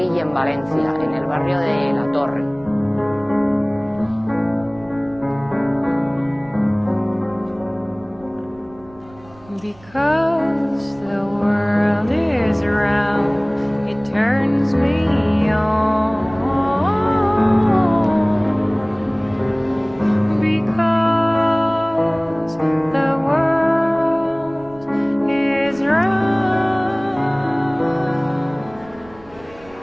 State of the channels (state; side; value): noise; right; rumble, 24 dB below the sound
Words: en Valencia, en el barrio de La Torre. Because the world is round, it turns me on. Because the world is round.